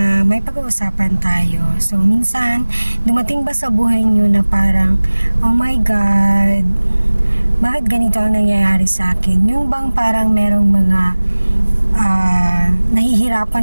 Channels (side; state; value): both; inverted; correlation -1.00